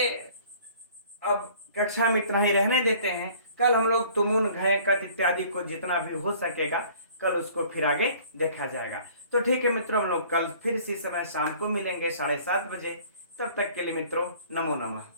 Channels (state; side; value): inverted; both; correlation -0.53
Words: अब कक्षा में इतना ही रहने देते हैं। कल हम लोग तुमुन, घय, कत इत्यादि को जितना भी हो सकेगा कल उसको फिर आगे देखा जाएगा। तो ठीक है मित्रों, हम लोग कल फिर इसी समय शाम को मिलेंगे 7:30 बजे। तब तक के लिए मित्रों नमो नमः।